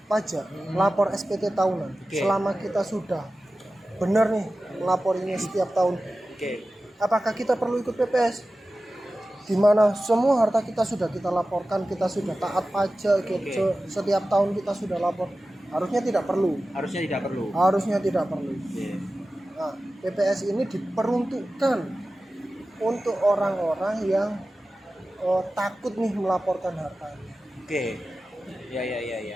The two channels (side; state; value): both; normal; correlation 0.95